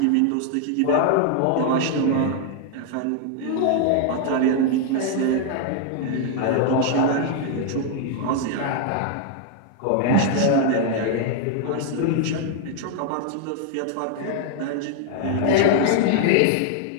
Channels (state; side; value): different; both; correlation 0.00